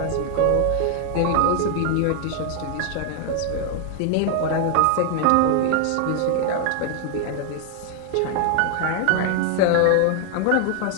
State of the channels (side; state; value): both; different; correlation 0.00